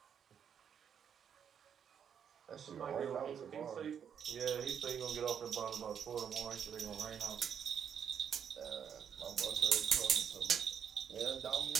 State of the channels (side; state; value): left; quieter; 8.0 dB